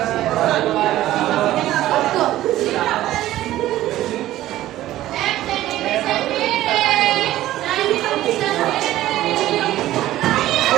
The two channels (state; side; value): quieter; left; 14.6 dB